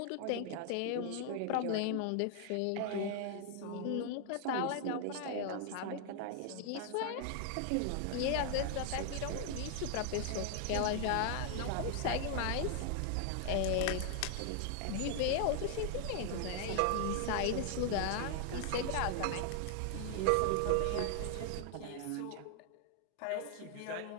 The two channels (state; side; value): different; both; correlation 0.00